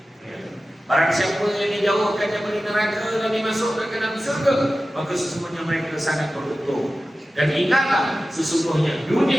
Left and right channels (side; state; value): both; normal; correlation 0.95